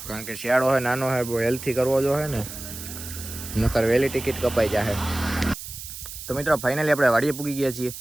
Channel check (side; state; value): right; noise; hiss, 11 dB below the sound